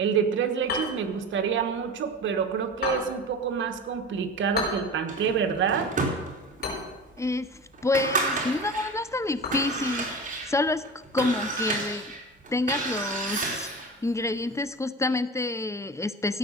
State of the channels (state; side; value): normal; both; correlation 0.31